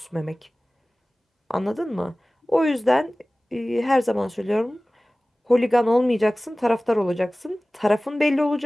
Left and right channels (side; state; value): both; normal; correlation 0.98